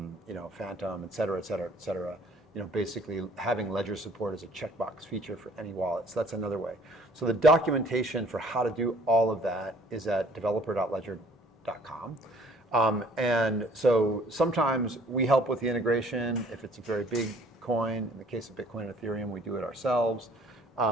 Phantom, et cetera, et cetera, et cetera. Basically having Ledger support as a checkbox feature for any wallet. So that's another way. So the documentation for how to do all of that is at developer.ledger.com. And so sometimes we help with the integration if it's a very big coin. In the case of Bitcoin and Ethereum, we do it ourselves.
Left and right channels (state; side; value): normal; both; correlation 0.56